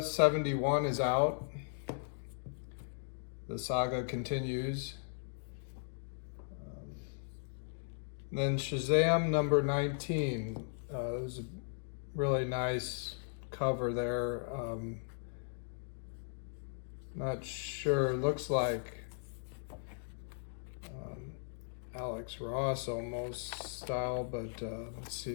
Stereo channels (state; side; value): silent; right; digital silence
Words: is out. The saga continues. Then Shazam #19. There's a really nice cover there. Not sure. Looks like Alex Ross almost style, but let's see